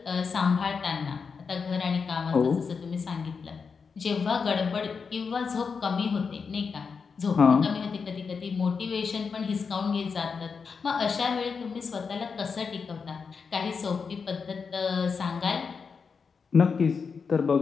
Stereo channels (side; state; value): right; quieter; 5.5 dB